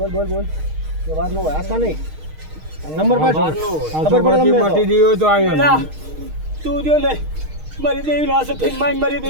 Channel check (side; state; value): left; late; 6.5 ms